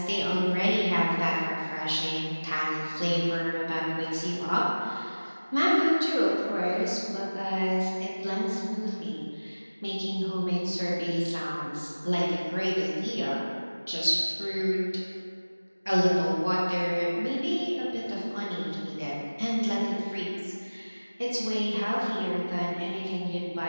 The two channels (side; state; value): both; inverted; correlation -1.00